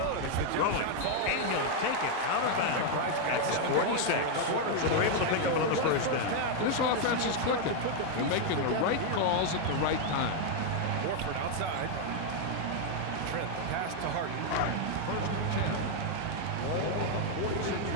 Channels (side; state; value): both; different; correlation 0.00